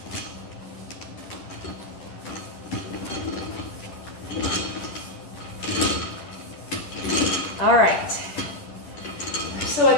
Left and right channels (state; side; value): late; right; 11 ms